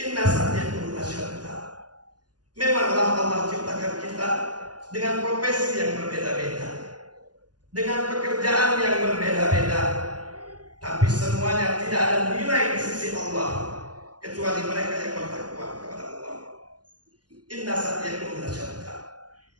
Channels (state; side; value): late; left; 0.69 ms